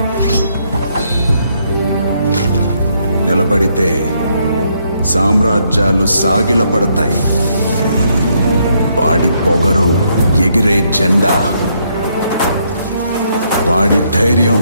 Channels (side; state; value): both; inverted; correlation -0.73